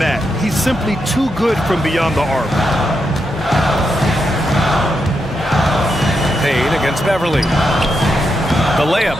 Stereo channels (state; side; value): normal; both; correlation 0.84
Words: He's simply too good from beyond the arc. Payne against Beverly. The